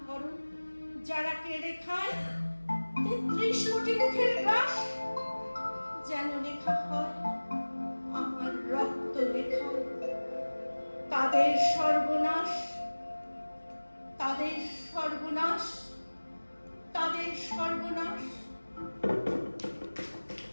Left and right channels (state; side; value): inverted; both; correlation -1.00